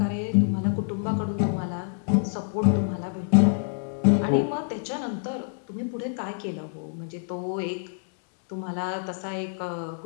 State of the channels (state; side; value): silent; right; 60 dB below the other